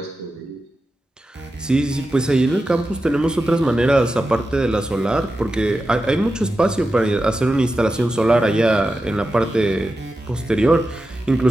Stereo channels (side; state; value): both; normal; correlation 0.91